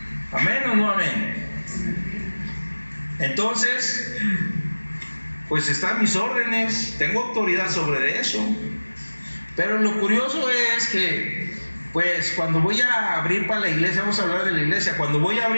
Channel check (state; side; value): inverted; both; correlation -1.00